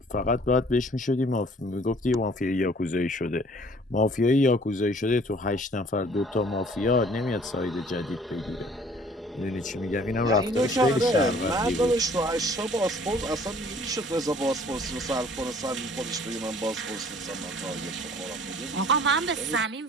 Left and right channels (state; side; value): normal; both; correlation 0.55